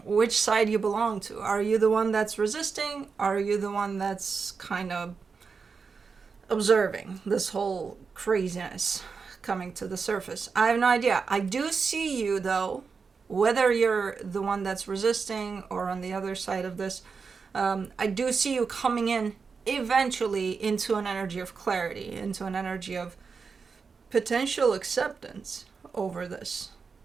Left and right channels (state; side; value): quieter; left; 5.2 dB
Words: which side you belong to. Are you the one that's resisting? Are you the one that's kind of observing this whole craziness coming to the surface? I have no idea. I do see you, though, whether you're the one that's resisting or on the other side of this. I do see you coming in eventually into an energy of clarity, into an energy of potential acceptance over this.